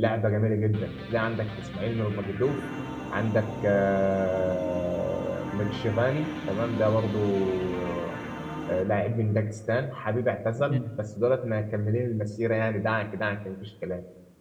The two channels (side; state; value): both; identical; correlation 1.00